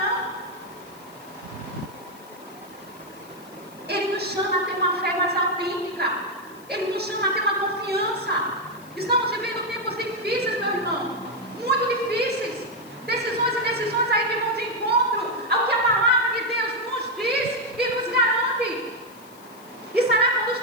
Ele nos chama a ter uma fé mais autêntica. Ele nos chama a ter uma confiança. Estamos vivendo tempos difíceis, meu irmão. Muito difíceis. Decisões e decisões aí que vão de encontro ao que a palavra de Deus nos diz e nos garante. E será que quando os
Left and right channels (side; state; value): left; noise; hiss, 24 dB below the sound